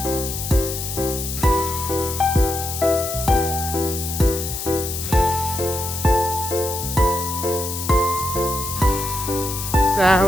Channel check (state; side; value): noise; left; hiss, 6 dB below the sound